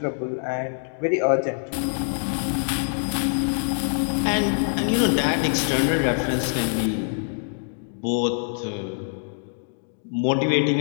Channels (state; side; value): silent; right; digital silence